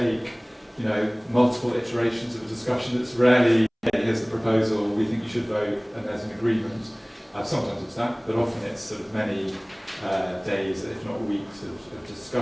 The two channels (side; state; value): both; identical; correlation 1.00